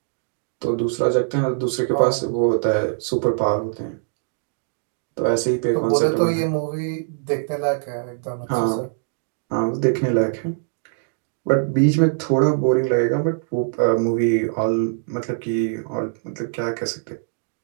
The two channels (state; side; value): silent; left; digital silence